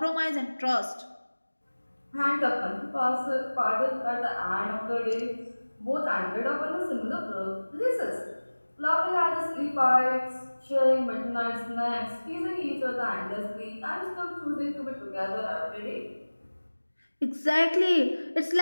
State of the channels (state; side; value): inverted; both; correlation -1.00